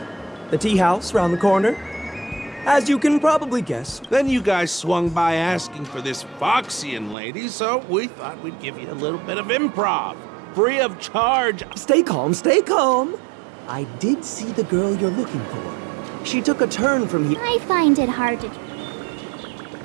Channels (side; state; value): left; drops out; at 7.2 s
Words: The tea house round the corner. As you can probably guess. Then you guys swung by asking for this Foxian lady, so we thought we'd give you a little bit of improv. Free of charge. Stay calm, stay calm. I did see the girl you're looking for. She took a turn from here. I find it hard to...